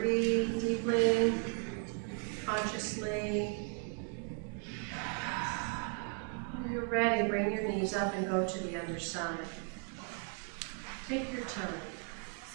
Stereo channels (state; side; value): quieter; left; 39.7 dB